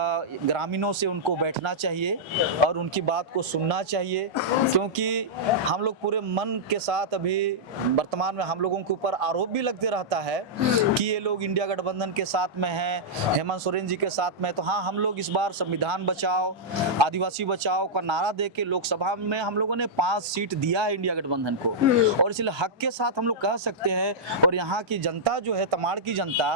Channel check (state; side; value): normal; both; correlation -0.10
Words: से उनको बैठना चाहिए और उनकी बात को सुनना चाहिए, क्योंकि हम लोग पूरे मन के साथ अभी वर्तमान में हम लोगों के ऊपर आरोप भी लगते रहता है कि ये लोग इंडिया गठबंधन के साथ में हैं, हेमंत सोरेन जी के साथ में। तो हाँ, हम लोग इस बार संविधान बचाओ, आदिवासी बचाओ का नारा दे के लोकसभा में हम लोगों ने 5 सीट दिया है इंडिया गठबंधन को, और इसलिए हक के साथ हम लोग कह सकते हैं। और यहाँ की जनता जो है, तमाड़ की